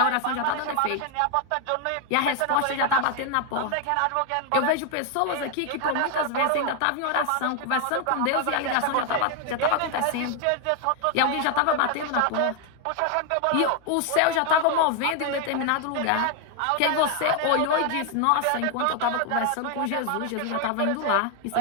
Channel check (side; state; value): both; different; correlation 0.00